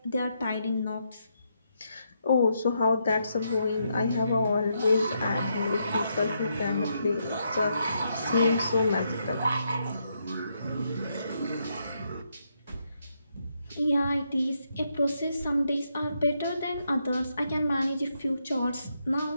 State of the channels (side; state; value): both; inverted; correlation -0.79